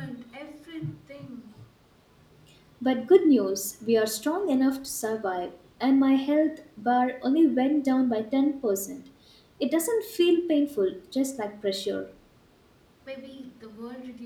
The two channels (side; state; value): both; identical; correlation 1.00